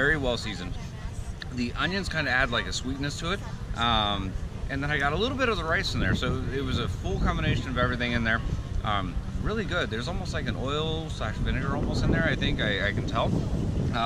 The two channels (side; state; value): both; identical; correlation 1.00